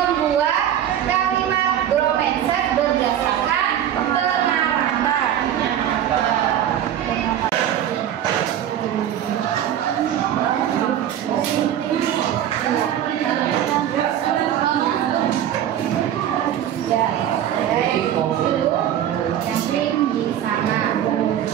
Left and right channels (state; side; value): quieter; left; 10.7 dB